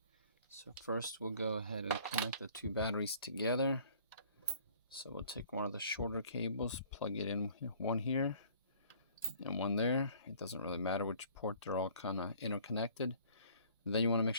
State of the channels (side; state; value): both; inverted; correlation -0.54